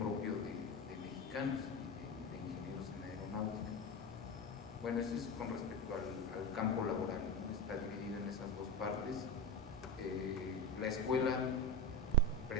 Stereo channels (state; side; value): normal; both; correlation 0.21